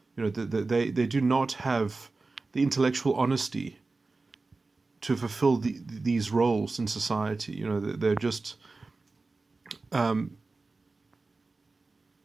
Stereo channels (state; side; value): quieter; left; 3.7 dB